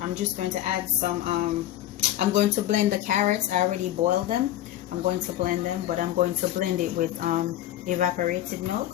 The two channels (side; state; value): right; quieter; 13.3 dB